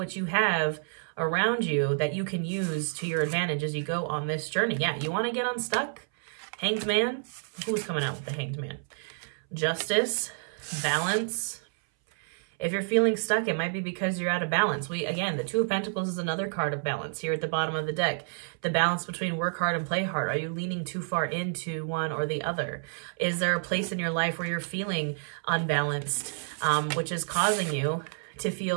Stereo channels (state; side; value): silent; left; 58 dB below the other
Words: you have around you that you can use to your advantage as you go on this journey. Yeah, you want to get unstuck? Hanged Man? Who's coming out with the Hanged Man? Justice, balance. If you're feeling stuck, it might be because you're out of balance. Again, the Two of Pentacles is another card of balance here at the bottom of the deck. The balance between work hard and play hard. Are you leaning too far into one or the other? Is there a place in your life where you're feeling unbalanced, which is causing you to